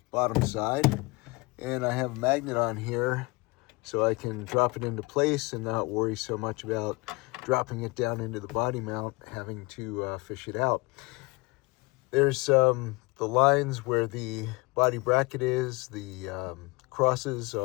bottom side. And I have a magnet on here so I can drop it into place and not worry so much about dropping it down into the body mount, having to fish it out. There's the lines where the body bracket is. The crosses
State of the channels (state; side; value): quieter; right; 25.7 dB